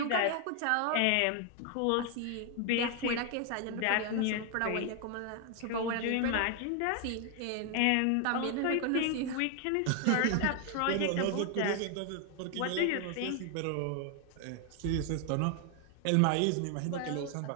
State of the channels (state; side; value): different; both; correlation 0.00